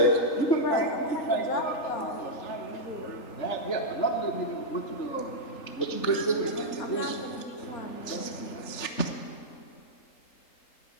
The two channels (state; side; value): late; right; 3.4 ms